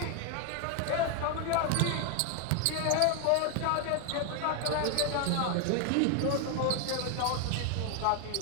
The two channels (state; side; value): different; both; correlation 0.01